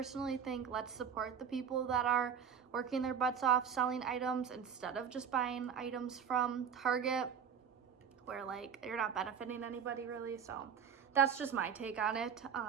think let's support the people that are working their butts off selling items instead of just buying items from Target, where like you're not benefiting anybody really. So that's just my take on it.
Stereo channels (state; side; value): quieter; left; 7.4 dB